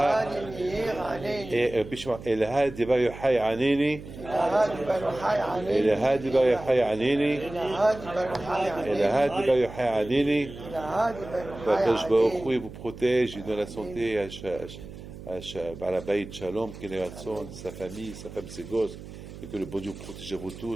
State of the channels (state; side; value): noise; right; hum, 14 dB below the sound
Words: de Bar Yochai aneni, et la de Bar Yochai aneni, et la de Bar Yochai aneni. Qu'Hakadosh Baruch Hu vous protège, il donne la santé à Baal Habayit Shalom, qu'il ait ratson, sa famille, sa femme, ses gosses, et que le bon Dieu vous protège à vous